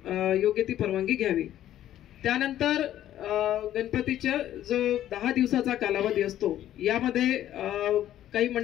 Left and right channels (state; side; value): quieter; right; 12.2 dB